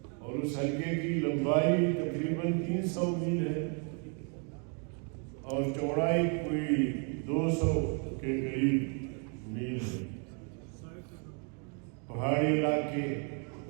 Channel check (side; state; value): left; quieter; 39.3 dB